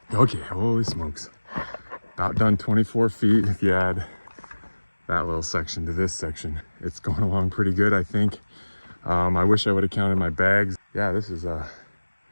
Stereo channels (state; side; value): inverted; both; correlation -1.00